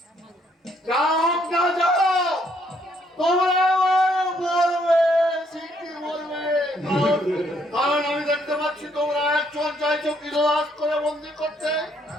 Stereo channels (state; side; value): normal; both; correlation 0.69